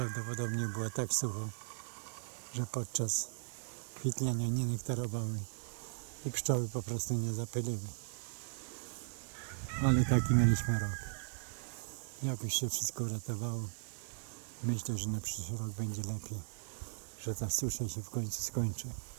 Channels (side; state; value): left; silent; digital silence